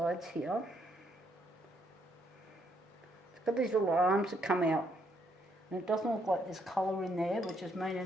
here. It's got these little arms that come out, and it doesn't look like there's colour in there, which is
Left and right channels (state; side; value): normal; both; correlation 0.72